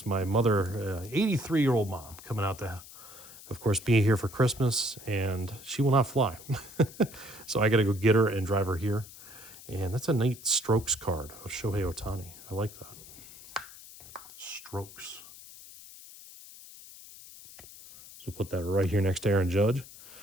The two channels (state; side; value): noise; left; hiss, 17 dB below the sound